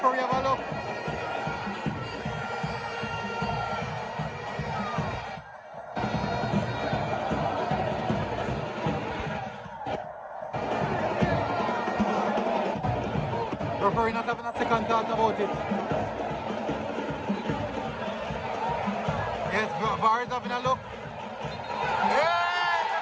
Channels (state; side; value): identical; both; correlation 1.00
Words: have a look? Referee not having a second thought about it. Yes, VAR is having a look.